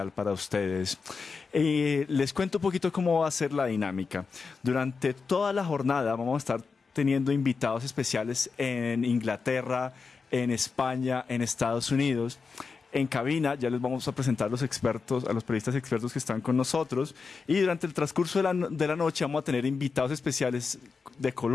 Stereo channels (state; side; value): quieter; right; 4.9 dB